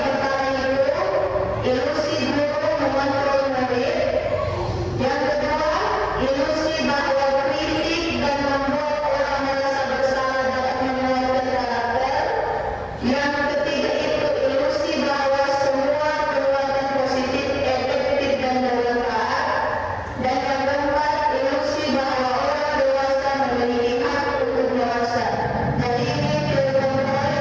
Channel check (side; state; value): both; identical; correlation 1.00